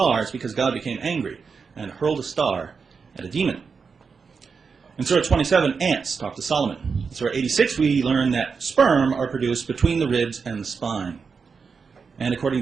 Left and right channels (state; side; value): quieter; left; 5.4 dB